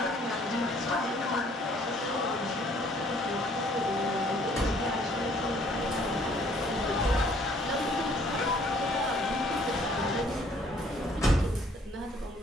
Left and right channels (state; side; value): normal; both; correlation 0.61